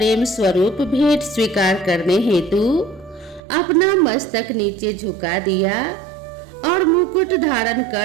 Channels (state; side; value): drops out; left; at 3.4 s